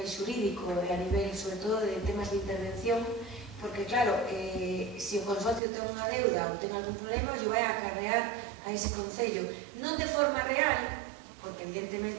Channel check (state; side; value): drops out; left; at 5.6 s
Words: xurídico e a nivel, sobre todo, de temas de intervención, porque claro, se o consorcio ten unha deuda ou ten algún problema, yo vai a acarrear a ese concello, non de forma real, porque